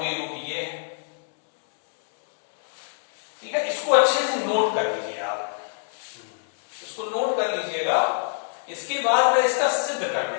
रूप ये है, ठीक है। इसको अच्छे से नोट कर लीजिए आप, इसको नोट कर लीजिएगा। इसके बाद मैं इसका सिद्ध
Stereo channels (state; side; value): silent; right; digital silence